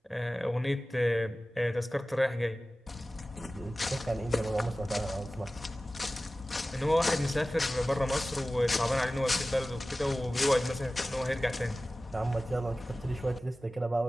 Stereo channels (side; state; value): both; normal; correlation 0.96